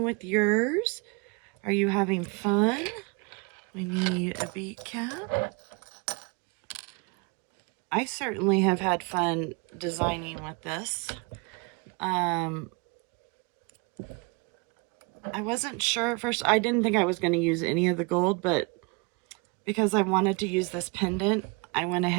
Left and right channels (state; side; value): quieter; left; 30.1 dB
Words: with yours? Are you having fun? We need a bead cap. I certainly have had fun designing with this. I wasn't sure at first. I didn't think I was going to use any of the gold, but because I wanted to use this pendant, I went